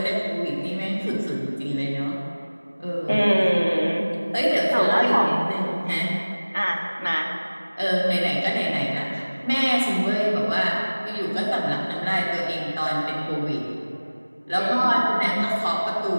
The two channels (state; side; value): inverted; both; correlation -1.00